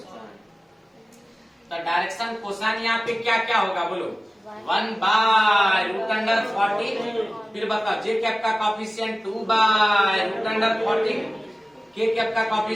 तो डायरेक्शन कोसाइन यहाँ पे क्या क्या होगा बोलो? 1 बाय रूट अंडर 14, फिर बताओ जे कैप का कोएफिशिएंट 2 बाय रूट अंडर 14, के कैप का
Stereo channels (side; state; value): both; normal; correlation 0.97